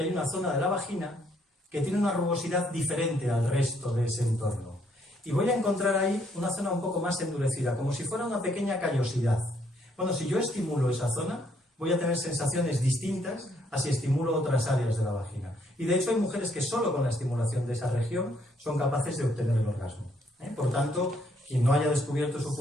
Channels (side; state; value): both; normal; correlation 0.69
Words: hay una zona de la vagina que tiene una rugosidad diferente al resto de ese entorno. Y voy a encontrar ahí una zona un poco más endurecida, como si fuera una pequeña callosidad. Bueno, si yo estimulo esa zona, voy a tener sensaciones distintas a si estimulo otras áreas de la vagina. Y de hecho hay mujeres que solo con la estimulación de esa región son capaces de obtener el orgasmo. Por tanto, quien no haya descubierto su